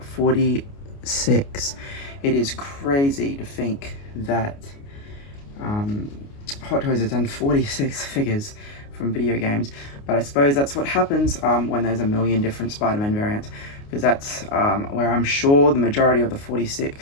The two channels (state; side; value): late; right; 29 ms